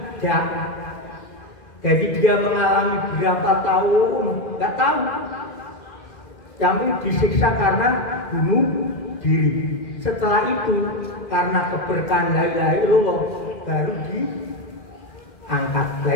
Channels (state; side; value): late; right; 2.0 ms